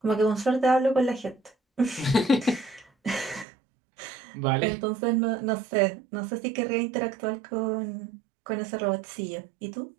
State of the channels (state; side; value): drops out; left; at 3.5 s